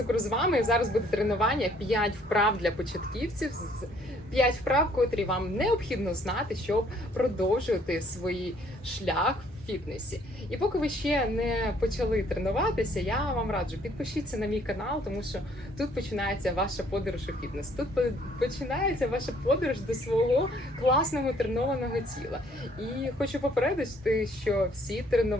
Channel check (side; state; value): both; normal; correlation 0.62